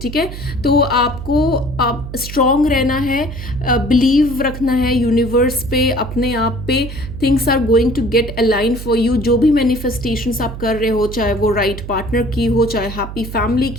ठीक है, तो आपको आप स्ट्रांग रहना है, बिलीव रखना है यूनिवर्स पे, अपने आप पे. Things are going to get align for you. जो भी मैनिफेस्टेशंस आप कर रहे हो, चाहे वो राइट पार्टनर की हो, चाहे हैप्पी फैमिली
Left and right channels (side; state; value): right; noise; hum, 10 dB below the sound